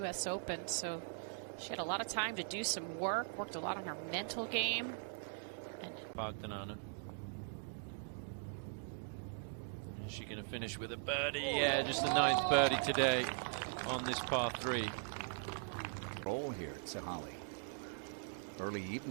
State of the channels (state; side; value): silent; left; digital silence